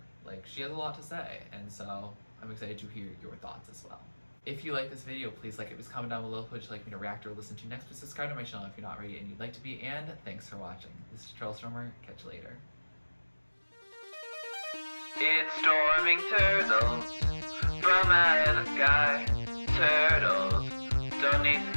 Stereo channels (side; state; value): both; inverted; correlation -1.00